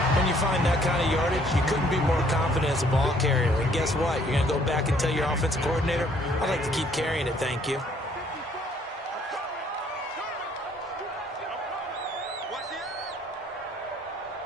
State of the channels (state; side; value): normal; both; correlation 0.62